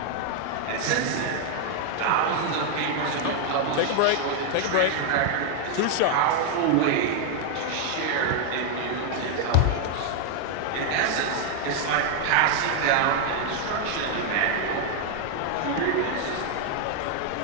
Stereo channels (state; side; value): different; both; correlation 0.00